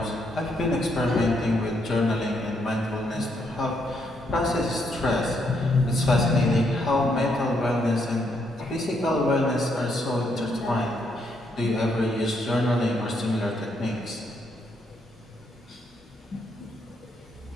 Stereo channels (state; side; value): normal; both; correlation 0.75